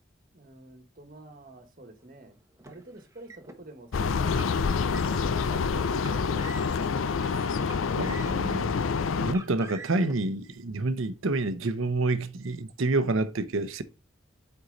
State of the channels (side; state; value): both; normal; correlation 0.35